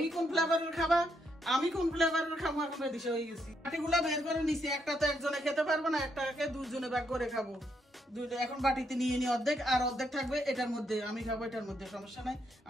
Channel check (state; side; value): normal; both; correlation 0.77